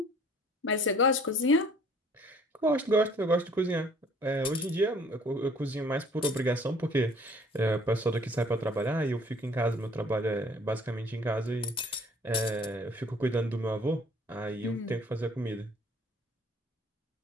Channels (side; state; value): both; normal; correlation 0.55